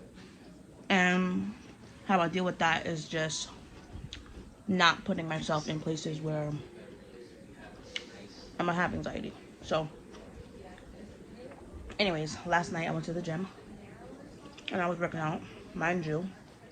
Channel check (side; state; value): both; identical; correlation 1.00